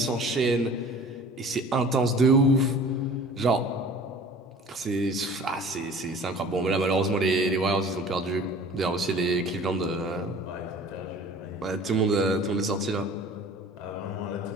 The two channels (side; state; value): both; normal; correlation 0.45